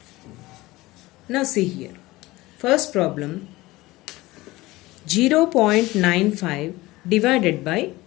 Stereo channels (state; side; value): quieter; right; 19.5 dB